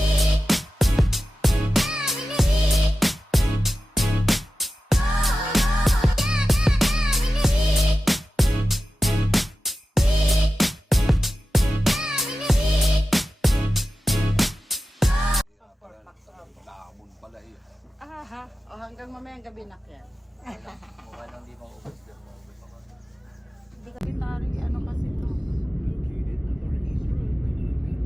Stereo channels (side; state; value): both; normal; correlation 0.93